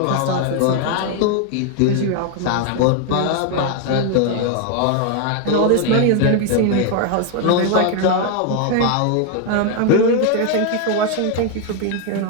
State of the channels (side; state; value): both; different; correlation 0.01